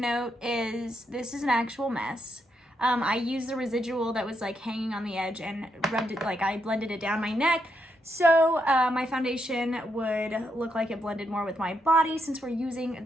is this is an actual mess. I used the residual that was like hanging on the edge and rubbed it, like I blended it down my neck. So my foundation would look like it blended more with my body since we're using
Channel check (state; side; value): normal; both; correlation 0.80